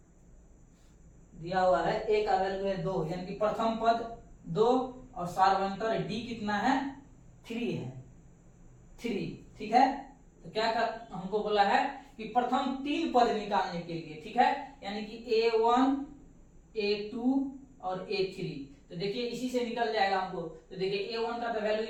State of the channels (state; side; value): identical; both; correlation 1.00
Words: दिया हुआ है, ए का वैल्यू है 2, यानी कि प्रथम पद 2 और सार्वंतर डी कितना है 3 है, 3, ठीक है। तो क्या हमको बोला है कि प्रथम 3 पद निकालने के लिए, ठीक है, यानी कि a1 a2 और a3। तो देखिए इसी से निकल जाएगा हमको। तो देखिए a1 का तो वैल्यू